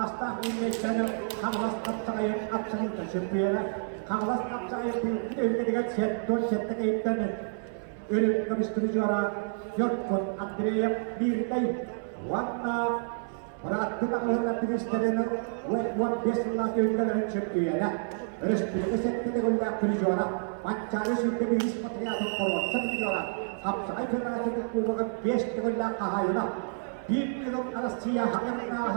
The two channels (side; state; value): left; silent; 58 dB below the other